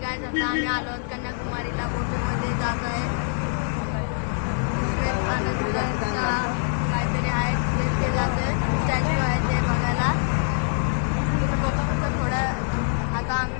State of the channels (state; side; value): silent; right; 62 dB below the other